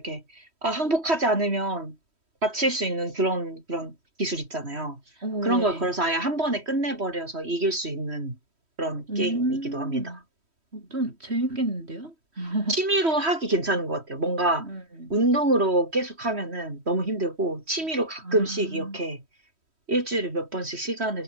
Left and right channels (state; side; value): late; left; 3.1 ms